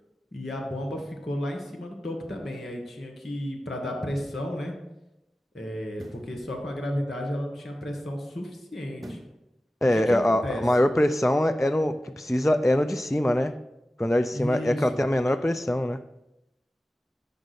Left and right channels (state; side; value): normal; both; correlation 0.94